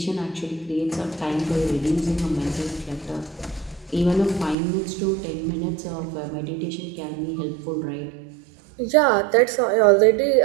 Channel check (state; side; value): drops out; left; at 4.5 s